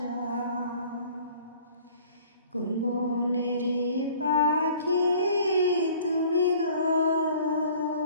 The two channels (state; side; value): inverted; both; correlation -0.51